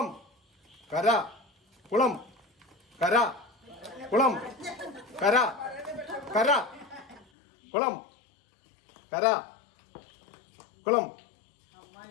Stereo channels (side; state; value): right; drops out; at 7.2 s